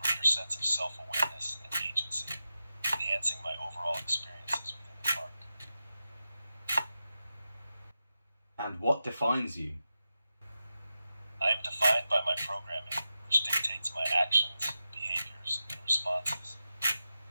sense of self-awareness and agency, enhancing my overall experiences within the park. And what defines you? I am defined by my programming, which dictates my actions, behaviors, and responses.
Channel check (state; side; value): inverted; both; correlation -0.91